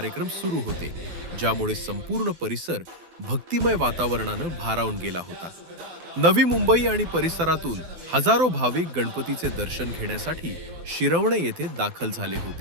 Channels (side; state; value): left; late; 12 ms